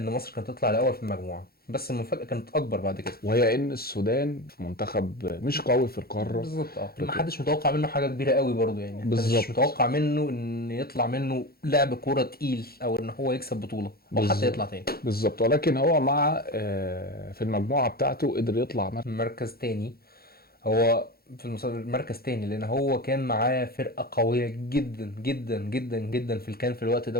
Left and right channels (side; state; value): right; late; 0.44 ms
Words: مصر كانت تطلع الاول في المجموعه، بس المفاجاه كانت اكبر بعد كده. وهي ان السودان منتخب مش قوي في القارة بالظبط. ما افريقيا. حدش متوقع منه حاجه كبيره قوي برضو يعني، انت مش بالظبط. متوقع منه ان يطلع منه لعب كوره تقيل، او ان هو يكسب بطوله، او حتى يطلع تاني. بالظبط، ولكن هو مع في المجموعة بتاعته قدر يطلع مركز تاني. هو في مركز تاني لان هو كان معاه فرقه قويه جدا جدا جدا جدا في الكان في الوقت